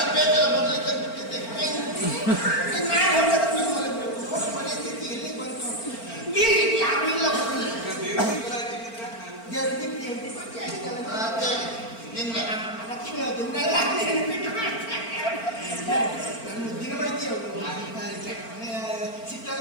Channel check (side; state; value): right; late; 4.4 ms